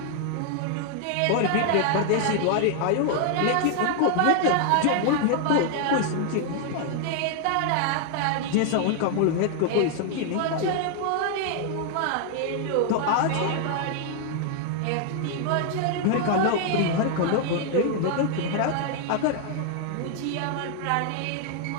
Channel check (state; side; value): different; both; correlation 0.00